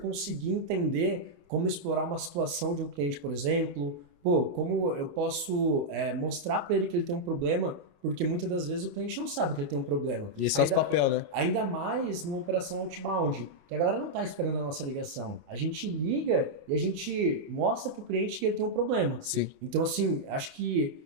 entender como explorar uma situação de um cliente, por exemplo. Pô, como eu posso mostrar para ele que ele tem um problema, porque muitas das vezes o cliente não sabe que ele tem um problema. E esse é o papel, né? Ainda mais numa operação outbound, que a galera não está esperando a nossa ligação. A gente liga e a gente mostra para o cliente que ele tem um problema. Sim. Então, assim, acho que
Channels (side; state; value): left; late; 28 ms